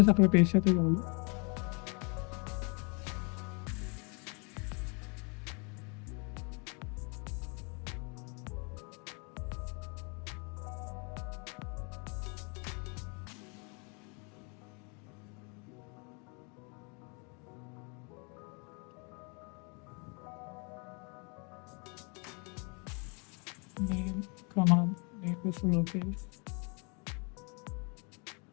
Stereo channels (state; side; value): quieter; right; 33.7 dB